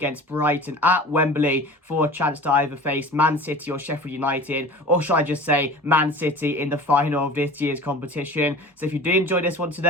Brighton at Wembley for a chance to either face Man City or Sheffield United, or should I just say Man City in the final of this year's competition. So if you do enjoy this one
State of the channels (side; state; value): both; normal; correlation 0.39